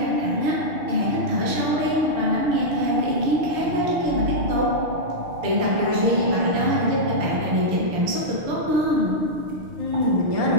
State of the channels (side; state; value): left; late; 6.6 ms